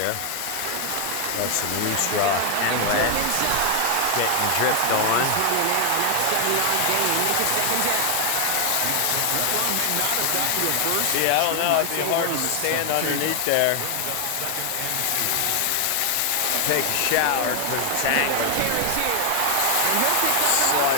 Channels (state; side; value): different; both; correlation 0.00